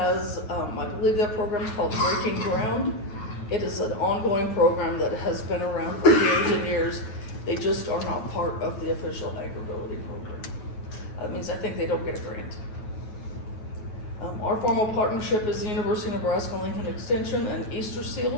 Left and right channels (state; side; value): late; right; 9.3 ms